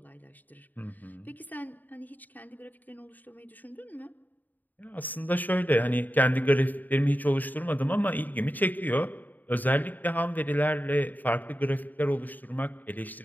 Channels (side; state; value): right; late; 0.086 ms